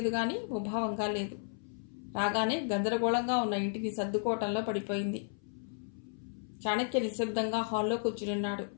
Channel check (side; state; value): right; silent; 55 dB below the other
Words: గాని ముభావంగా లేదు. రాగానే గందరగోళంగా ఉన్న ఇంటిని సర్దుకోవటంలో పడిపోయింది. చాణక్య నిశ్శబ్దంగా హాల్లో కూర్చునున్నాడు.